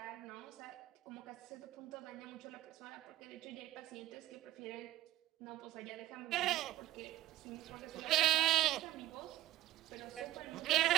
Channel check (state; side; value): quieter; left; 15.0 dB